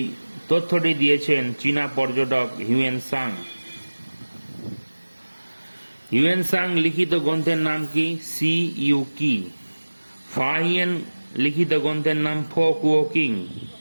তথ্যটি দিয়েছেন চীনা পর্যটক হিউয়েন সাং। হিউয়েন সাং লিখিত গ্রন্থের নাম কি? সি ইউ কি। ফাহিয়েন লিখিত গ্রন্থের নাম ফো কুও কিং।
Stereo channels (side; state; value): both; inverted; correlation -1.00